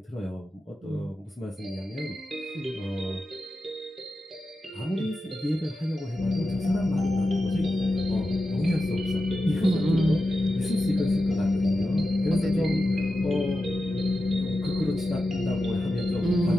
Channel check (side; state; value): both; normal; correlation 0.91